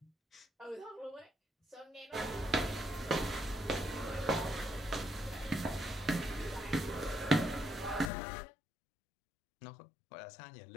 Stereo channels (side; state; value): right; drops out; at 8.1 s